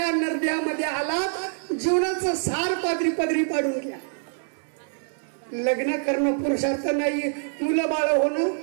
नरड्यामध्ये आलात जीवनाचं सार पदरी पाडून घ्या. लग्न करणं पुरुषार्थ नाहीये, मुलं बाळ होणं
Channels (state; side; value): silent; left; 62 dB below the other